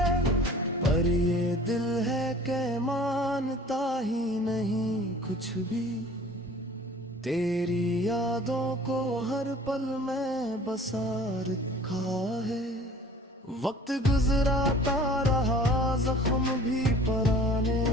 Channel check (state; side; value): normal; both; correlation 0.47